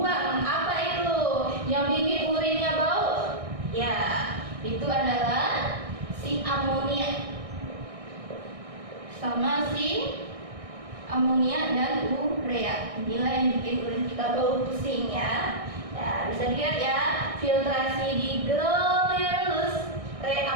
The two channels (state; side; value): late; left; 1.6 ms